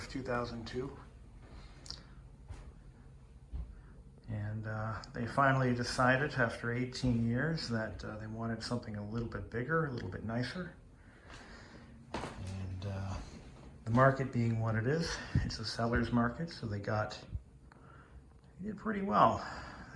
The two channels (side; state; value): both; identical; correlation 1.00